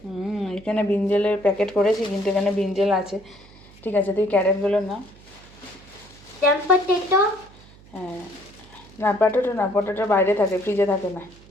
এখানে ব্রিঞ্জলের প্যাকেট করেছি, কিন্তু এখানে ব্রিঞ্জল আছে। ঠিক আছে, তুই ক্যারেটগুলো না। Then potato. হ্যাঁ, না পটেটো না, পটেটো বাইরে থাকে, ফ্রিজে থাকে না,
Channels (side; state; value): right; noise; hum, 24 dB below the sound